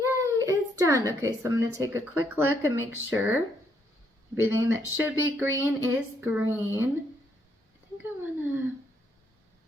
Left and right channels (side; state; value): both; normal; correlation 0.73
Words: is done. Okay, so I'm going to take a quick look and make sure everything that should be green is green. I think I want to